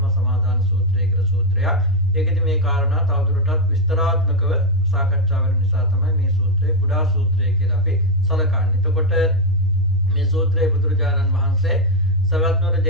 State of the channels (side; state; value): both; normal; correlation 0.04